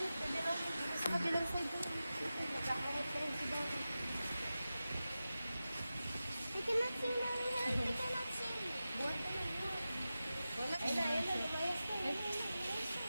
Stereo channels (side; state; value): both; inverted; correlation -0.94